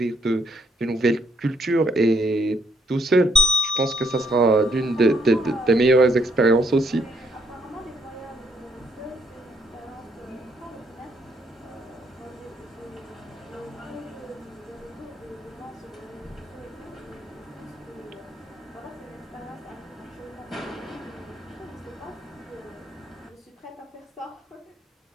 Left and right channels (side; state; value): both; normal; correlation 0.70